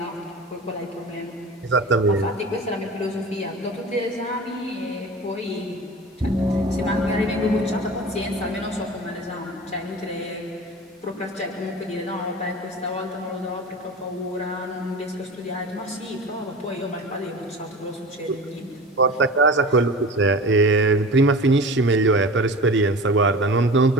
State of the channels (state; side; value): normal; both; correlation 0.35